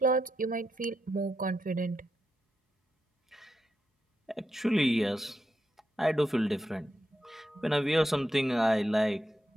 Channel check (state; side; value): normal; both; correlation 0.85